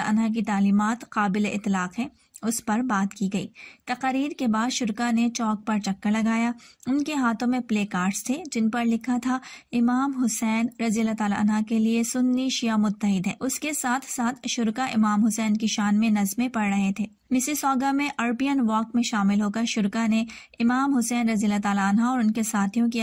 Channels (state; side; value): identical; both; correlation 1.00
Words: अन्हु की तालीमात काबिल इतलाक़ है, उस पर बात की गई। तकरीर के बाद शुरका ने चौक पर चक्कर लगाया। उनके हाथों में प्ले कार्ड्स थे जिन पर लिखा था इमाम हुसैन रज़ी अल्लाह तआला अन्हु के लिए सुन्नी शिया मुत्तहिद है। उसके साथ साथ शुरका इमाम हुसैन की शान में नज़में पढ़ रहे थे। मिसिसॉगा में अरबियन वॉक में शामिल होकर शुरका ने इमाम हुसैन रज़ी अल्लाह तआला अन्हु और उनके साथियों की